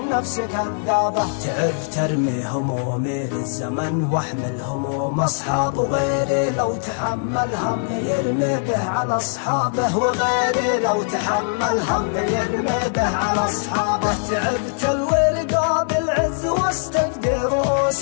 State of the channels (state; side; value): silent; right; 65 dB below the other